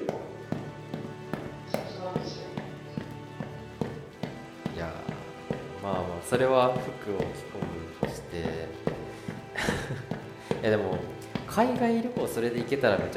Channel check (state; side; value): identical; both; correlation 1.00